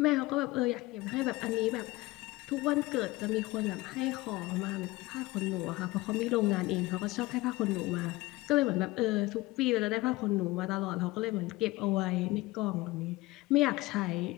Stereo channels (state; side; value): quieter; right; 20.3 dB